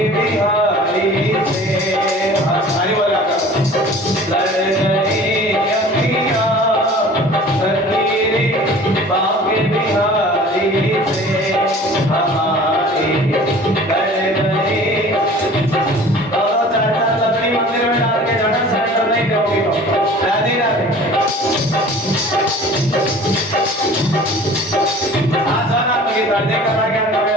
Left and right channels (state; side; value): normal; both; correlation 0.45